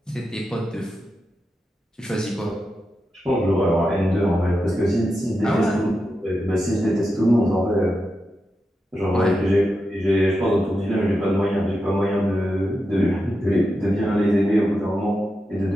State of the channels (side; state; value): both; normal; correlation 0.88